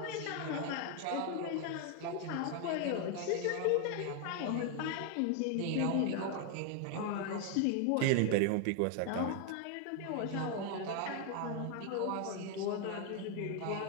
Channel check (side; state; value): both; different; correlation 0.01